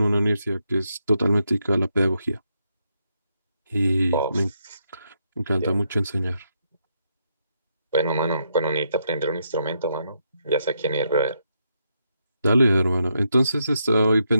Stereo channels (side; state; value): both; inverted; correlation -0.79